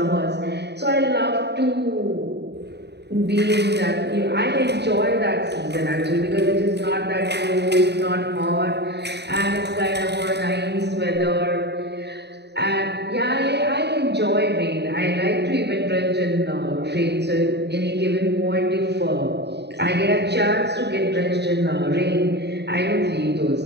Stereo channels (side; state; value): left; late; 0.49 ms